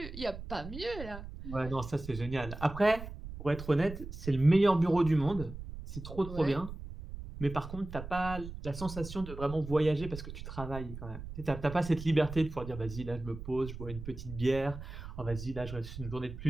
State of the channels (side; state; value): right; noise; rumble, 10 dB below the sound